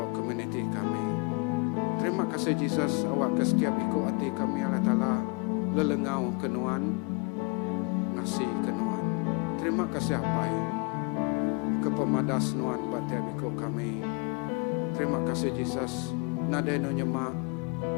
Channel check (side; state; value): right; quieter; 33.0 dB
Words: community kami. Terima kasih Yesus awak ke setiap ikut hati kami Allah Ta'ala lelengau kenuan ngasih kenuan. Terima kasih apai ke pemadas nuan batiap ikut kami. Terima kasih Yesus nadeno nyemak